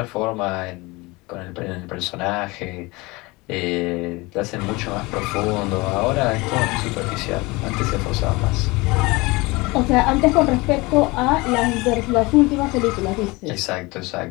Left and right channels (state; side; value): quieter; right; 23.6 dB